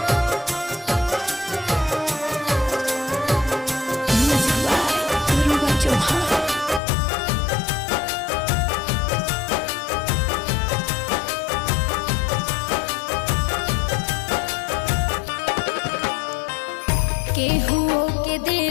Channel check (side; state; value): right; drops out; at 6.8 s